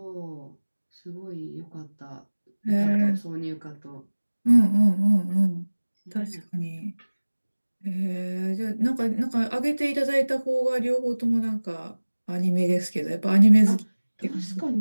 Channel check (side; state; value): both; inverted; correlation -1.00